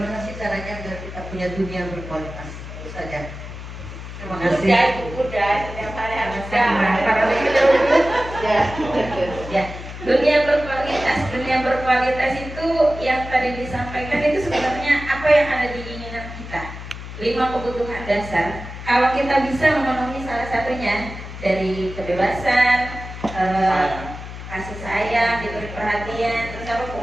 sih caranya agar kita punya dunia berkualitas? Itu saja. Terima kasih. Udah, setiap hari harus ya. Dunia berkualitas itu yang tadi disampaikan itu sebenarnya apa yang ada di keinginan kita. 5 kebutuhan dasar. Kalau kita bisa memenuhi salah satunya dari kebebasan, kasih sayang, diberi perhatian, terus apa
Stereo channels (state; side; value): noise; left; hum, 11 dB below the sound